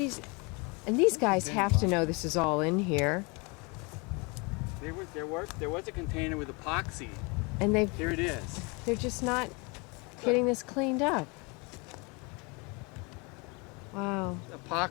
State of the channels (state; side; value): quieter; right; 29.6 dB